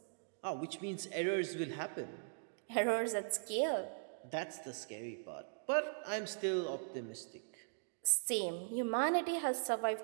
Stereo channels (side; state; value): left; silent; digital silence